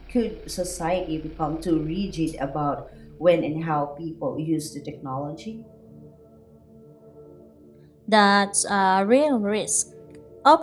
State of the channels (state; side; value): identical; both; correlation 1.00